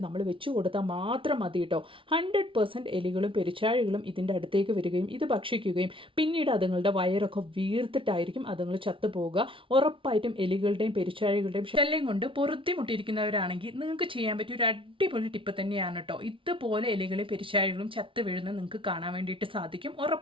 നമ്മൾ വെച്ച് കൊടുത്താൽ മാത്രം മതി കേട്ടോ. 100% എലികളും പെരുച്ചാഴികളും ഇതിൻ്റെ അടുത്തേക്ക് വരികയും ഇത് ഭക്ഷിക്കുകയും പിന്നീട് അതുങ്ങളുടെ വയറൊക്കെ വീർത്തിട്ടായിരിക്കും അതുങ്ങൾ ചത്തുപോകുക. ഉറപ്പായിട്ടും എലികളുടെയും പെരുച്ചാഴികളുടെയും ശല്യം കൊണ്ട് പൊറുത്തിമുട്ടിയിരിക്കുന്നവരാണെങ്കിൽ നിങ്ങൾക്ക് ചെയ്യാൻ പറ്റിയ ഒരു അടിപൊളി ടിപ്പ് തന്നെയാണ് കേട്ടോ. ഇതുപോലെ എലികളും പെരുച്ചാഴികളും ചത്ത് വീഴുന്നത് നിങ്ങൾക്ക് കാണാൻ വേണ്ടിയിട്ട് സാധിക്കും.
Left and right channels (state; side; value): late; left; 0.25 ms